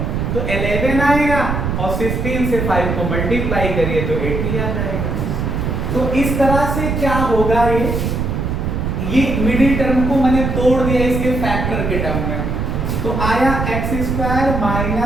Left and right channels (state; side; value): noise; right; rumble, 1 dB below the sound